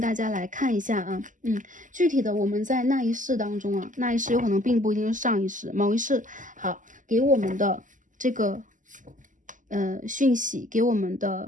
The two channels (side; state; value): left; late; 0.37 ms